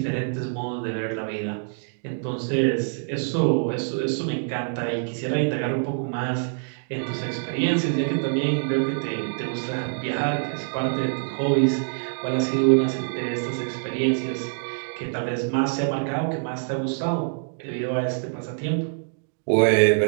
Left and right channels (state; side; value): silent; left; digital silence